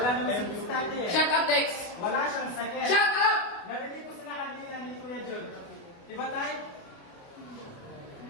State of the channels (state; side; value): late; right; 28 ms